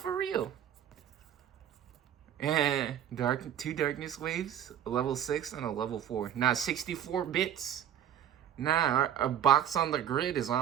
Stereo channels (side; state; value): left; quieter; 10.0 dB